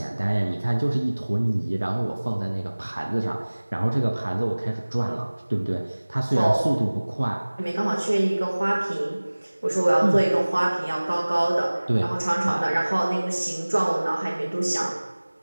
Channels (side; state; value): both; inverted; correlation -1.00